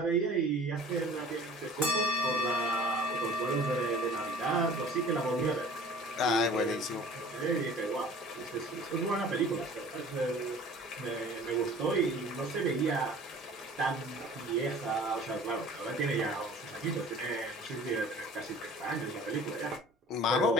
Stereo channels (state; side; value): normal; both; correlation 0.46